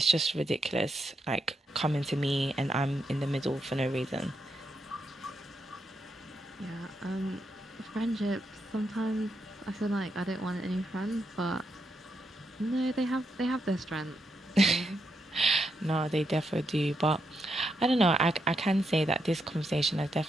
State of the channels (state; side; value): normal; both; correlation 0.82